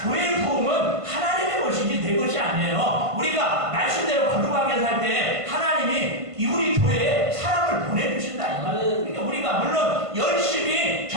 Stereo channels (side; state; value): left; late; 1.5 ms